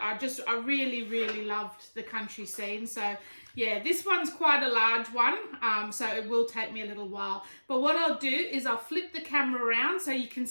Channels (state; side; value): inverted; both; correlation -1.00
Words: I really, really loved the country scene. So yeah, this one's quite a large one, so it will take me a little while. But what I'll do is I'll flip the camera around so you can